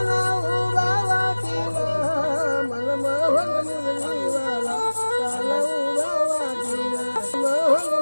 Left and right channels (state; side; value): inverted; both; correlation -1.00